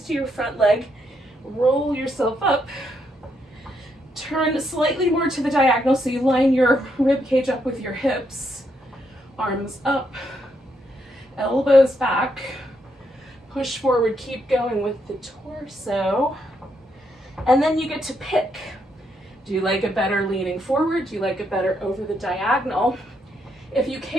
to your front leg. Roll yourself up. Turn slightly more to the diagonal so you line your rib cage up with your hips. Arms up, elbows back. Push forward, keep going with the torso. And then you get to pick. Do you like it better leaning forward? Do you like it better over the diagonal? If you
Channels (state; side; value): normal; both; correlation 0.77